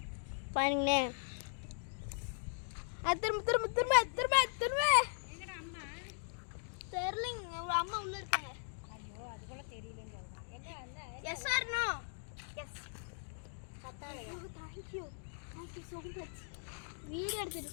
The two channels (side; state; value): right; silent; digital silence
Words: பாருங்களே. திரும்ப. எங்கடா அம்மா? தெரியலங்க. அம்மா உள்ள இருக்காங்க. ஐயோ அது கூட தெரியலன்னு சொல்றாங்க. எங்க அந்த yes or no? Yes. Thank you so much. Video எடுத்துட்டு